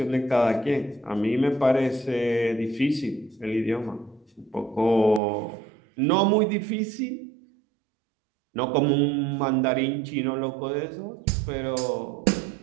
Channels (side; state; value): left; drops out; at 5.2 s